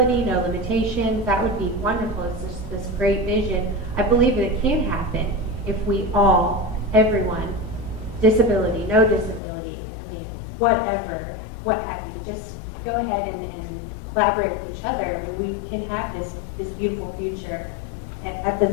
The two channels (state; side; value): drops out; right; at 9.4 s